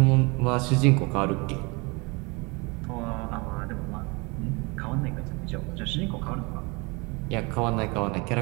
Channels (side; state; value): left; quieter; 28.1 dB